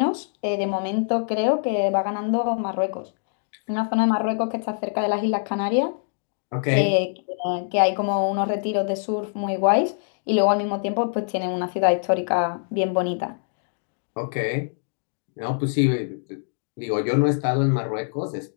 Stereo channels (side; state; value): right; silent; digital silence